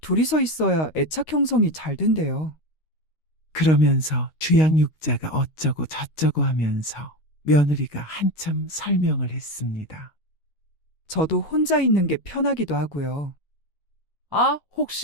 둘이서 있어야 애착 형성이 잘 된대요. 그러면서 주양육자가 어쩌고 저쩌고 하면서 며느리가 한참 설명을 했습니다. 저도 혼자 있는 게 편하기도 하고요. 아,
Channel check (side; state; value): right; late; 13 ms